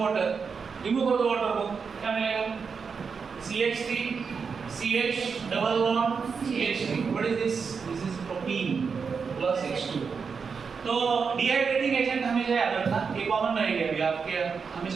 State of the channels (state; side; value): quieter; left; 5.6 dB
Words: वाटर. रिमूव कर दो वाटर को, क्या मिलेगा? CH3 CH double bond CH3. What is this? This is propene plus H2. तो डिहाइड्रेटिंग एजेंट हमेशा याद रखना. ये कॉमन रहेगा अभी आपके